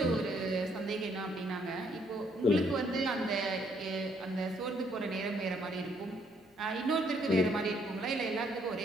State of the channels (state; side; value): normal; both; correlation 0.69